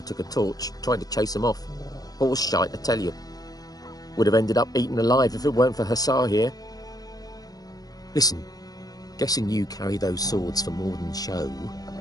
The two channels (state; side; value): late; right; 0.18 ms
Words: took a torch, trying to chase them off. Horse shite, I tell you. Would have ended up eaten alive if it weren't for Hussar here. Listen, guessing you carry those swords for more than show.